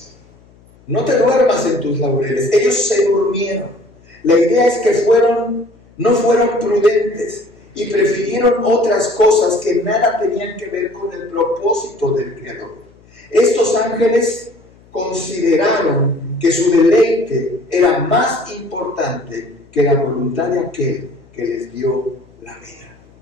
No te duermas en tus laureles. Ellos se durmieron. La idea es que no fueron prudentes y prefirieron otras cosas que nada tenían que ver con el propósito del Creador. Estos ángeles consideraron que su deleite era más importante que la voluntad de aquel que les dio la vida.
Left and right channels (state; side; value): noise; left; hum, 28 dB below the sound